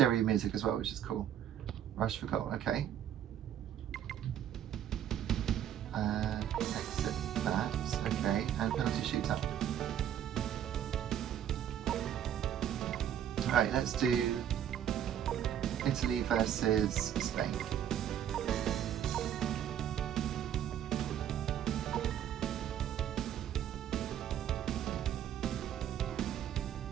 music as well, which is cool. Rush for goal, okay. Exit that, okay. And penalty shootout. Alright, let's do Italy versus Spain.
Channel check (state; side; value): quieter; left; 10.1 dB